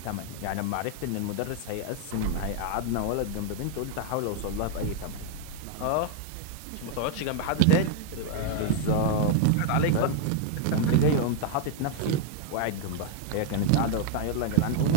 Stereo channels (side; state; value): both; different; correlation 0.00